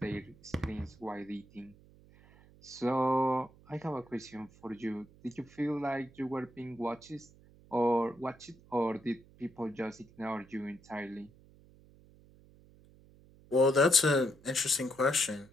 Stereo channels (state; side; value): noise; right; hum, 25 dB below the sound